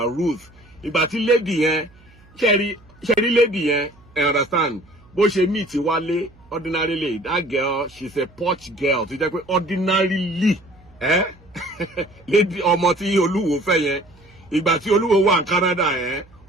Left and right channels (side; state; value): right; noise; hum, 27 dB below the sound